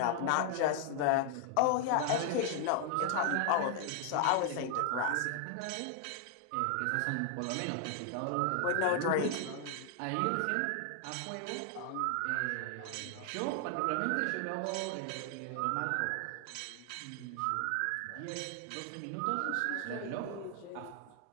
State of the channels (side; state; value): both; different; correlation 0.00